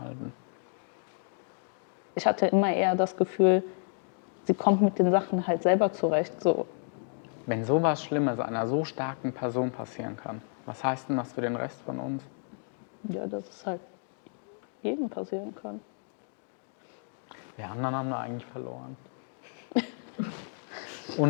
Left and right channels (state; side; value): silent; right; 57 dB below the other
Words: ich hatte immer eher das Gefühl, sie kommt mit den Sachen halt selber zurecht. So. Wenn sowas Schlimmes einer so starken Person passieren kann, was heißt denn das für den Rest von uns? Ja, dass es halt jedem passieren kann. Wir anderen haben da eigentlich verloren.